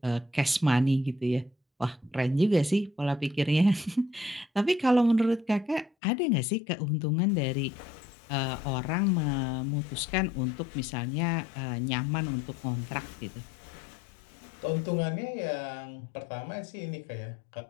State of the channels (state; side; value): drops out; right; at 5.9 s